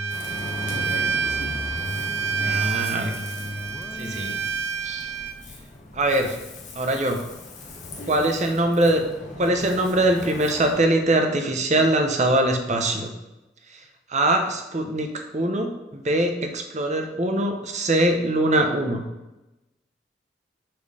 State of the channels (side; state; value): both; normal; correlation 0.41